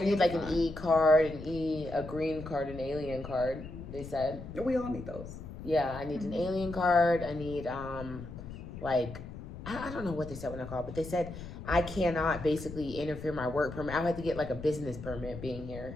like an E card, a green card, an alien card. They said we all need those. Yeah, I need an alien card. I need I don't know what they said when I called, but they said I cannot basically interfere my work permit. I have to get like a business permit being here.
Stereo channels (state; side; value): noise; left; rumble, 11 dB below the sound